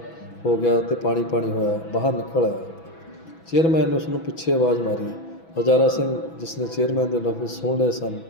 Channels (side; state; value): right; late; 6.1 ms